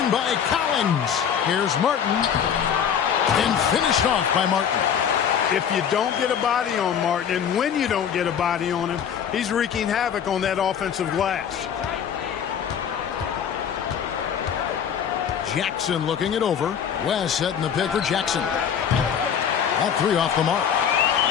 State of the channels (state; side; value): quieter; right; 8.2 dB